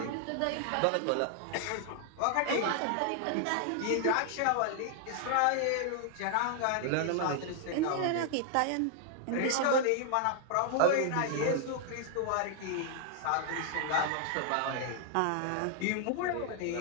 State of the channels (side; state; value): both; different; correlation 0.00